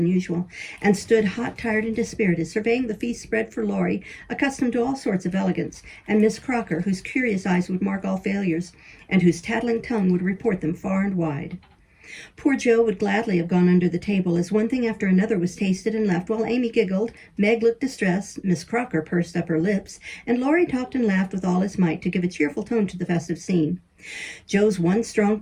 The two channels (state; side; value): identical; both; correlation 1.00